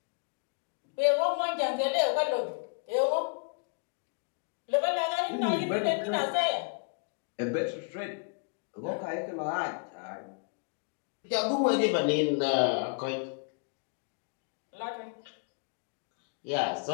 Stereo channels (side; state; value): right; quieter; 38.0 dB